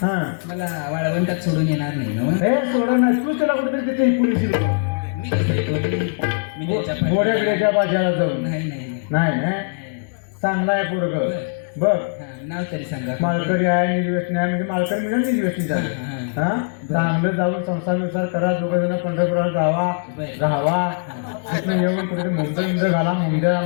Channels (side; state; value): right; quieter; 38.5 dB